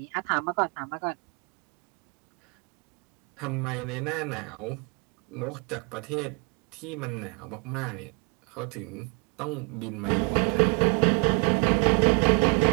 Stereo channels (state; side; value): quieter; left; 34.6 dB